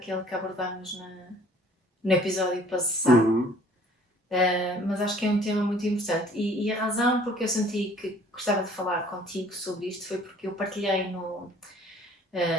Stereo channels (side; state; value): both; normal; correlation 0.55